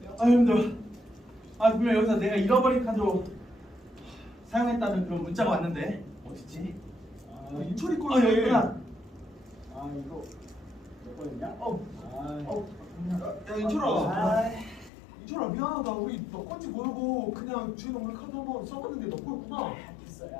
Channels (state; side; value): drops out; right; at 14.9 s